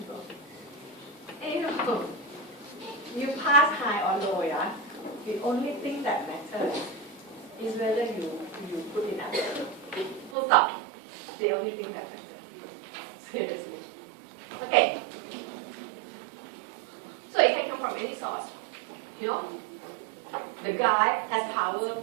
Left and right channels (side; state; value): left; drops out; at 10.4 s